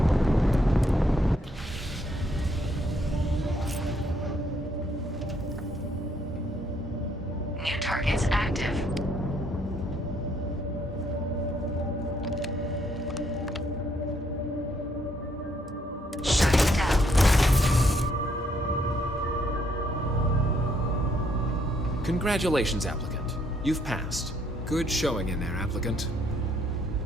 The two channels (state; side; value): normal; both; correlation 0.70